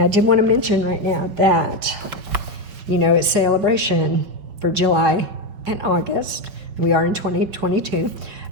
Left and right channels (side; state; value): left; late; 5.1 ms